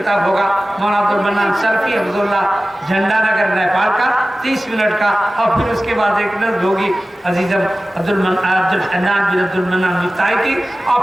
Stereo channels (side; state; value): both; normal; correlation 0.96